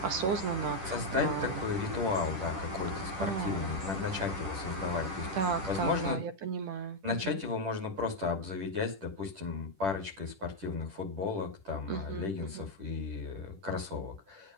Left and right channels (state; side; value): late; left; 10 ms